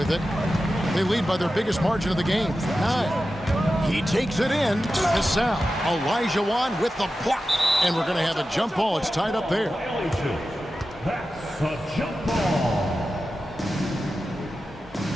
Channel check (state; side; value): normal; both; correlation 0.93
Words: it. They lead by their biggest margin of the game, 9. He takes it in. Cassell. Olajuwon with the block. And we're going to have a jump ball. It's tied up there. That's a jump ball.